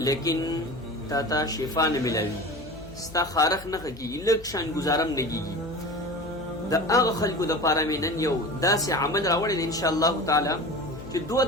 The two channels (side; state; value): left; noise; hum, 17 dB below the sound